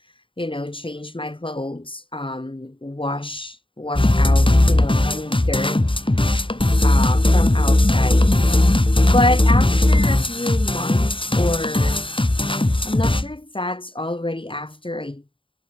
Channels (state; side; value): late; right; 0.25 ms